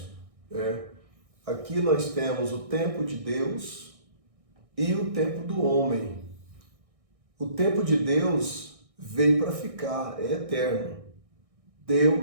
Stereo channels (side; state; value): left; late; 1.6 ms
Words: Aqui nós temos o tempo de Deus e o tempo do homem. O tempo de Deus veio para ficar, é eterno.